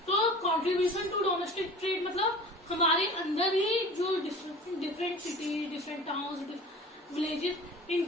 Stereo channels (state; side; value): normal; both; correlation 0.40